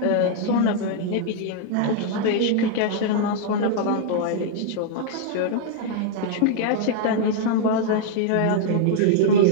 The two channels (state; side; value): different; both; correlation -0.01